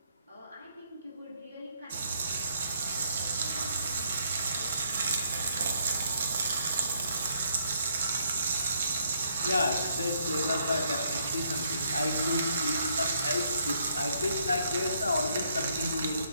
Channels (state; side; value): inverted; both; correlation -0.70